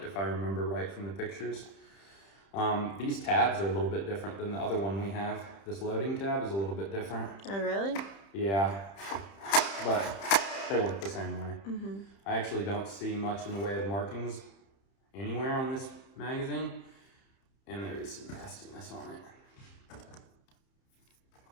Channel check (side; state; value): right; late; 30 ms